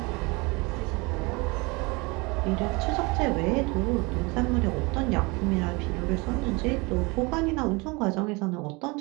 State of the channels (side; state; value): left; quieter; 26.6 dB